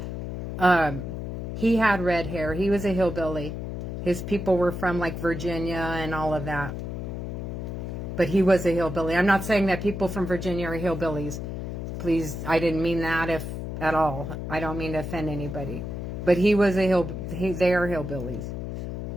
he had red hair. He was a hillbilly. His people were from like Virginia and all of that. But he was a hillbilly. I'm not saying that people from Virginia are hillbillies. Please, I didn't mean that at all. I don't mean to offend anybody. But he was they are hillbillies.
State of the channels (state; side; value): noise; left; hum, 5 dB below the sound